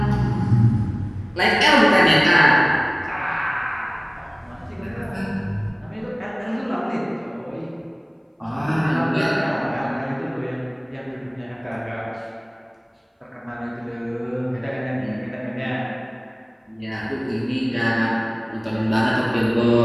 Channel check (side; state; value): both; identical; correlation 1.00